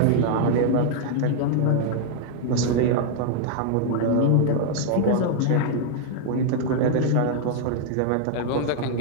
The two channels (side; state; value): both; different; correlation 0.00